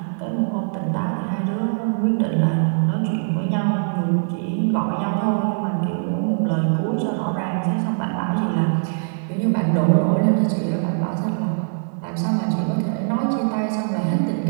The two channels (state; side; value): silent; left; digital silence